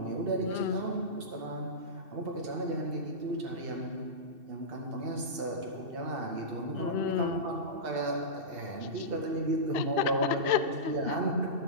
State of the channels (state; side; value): late; left; 2.7 ms